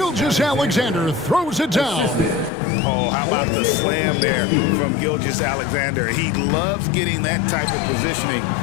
throws it down. Oh, how about the slam there from Gilgeous-Alexander? He loves getting that type of positioning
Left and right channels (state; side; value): drops out; right; at 2.5 s